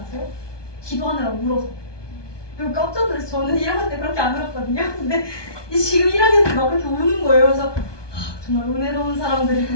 기도하느라 울어서. 그리고 깜짝 놀라서 저는 1학년 때 그렇게 안 울었거든요. 근데 지금 1학년 때 막 그렇게 우는 거예요. 그래서 정말 은혜로운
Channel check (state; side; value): late; right; 1.2 ms